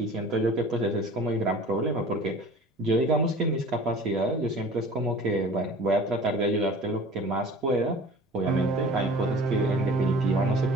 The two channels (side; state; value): both; normal; correlation 0.44